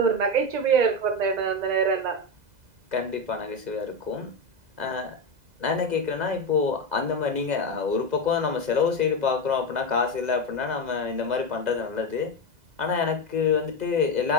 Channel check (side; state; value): left; late; 2.0 ms